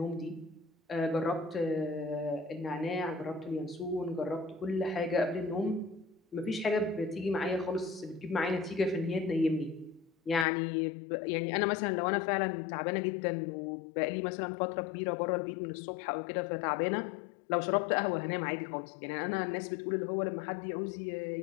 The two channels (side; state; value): right; drops out; at 10.5 s